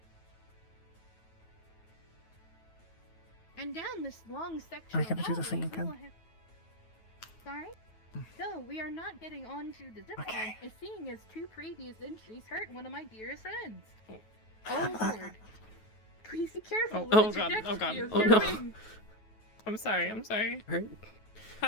And down this long section I of gotta do the thing hallway, again. we will have... Sorry? No, we are not getting onto the zip line, Okay. as seeing as 2 previous entries hurt one of my dearest friends. Oh lord. Please be careful Oh, with the God, oh, trajectory God. of Oh, your no. wing. I'm sorry, I'm sorry.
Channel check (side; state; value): right; late; 9.3 ms